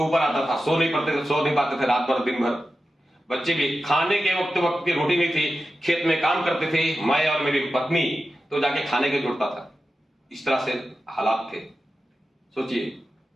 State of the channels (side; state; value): both; normal; correlation 0.92